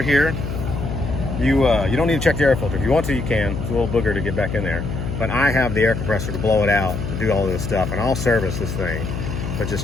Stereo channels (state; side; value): noise; left; hum, 4 dB below the sound